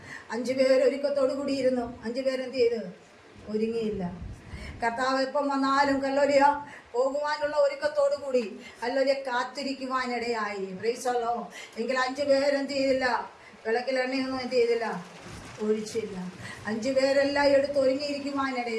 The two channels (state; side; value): identical; both; correlation 1.00